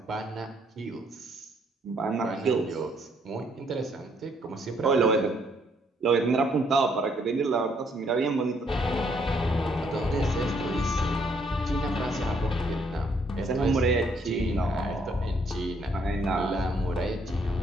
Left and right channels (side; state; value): both; normal; correlation 0.69